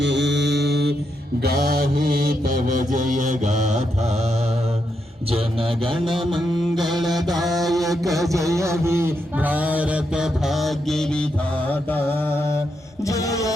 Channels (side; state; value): both; normal; correlation 0.82